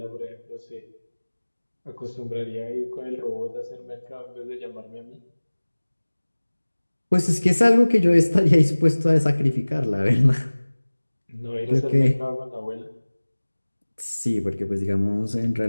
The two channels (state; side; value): inverted; both; correlation -1.00